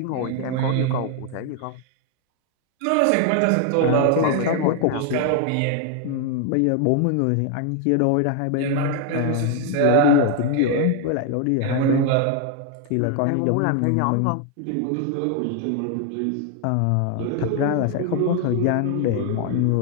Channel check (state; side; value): different; both; correlation 0.00